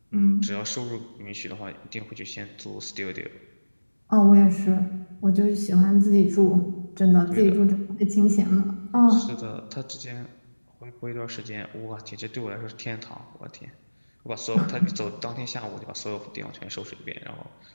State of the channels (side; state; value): both; inverted; correlation -1.00